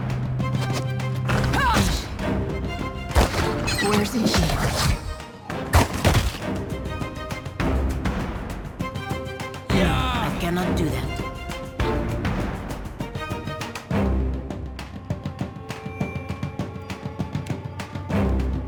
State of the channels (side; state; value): both; identical; correlation 1.00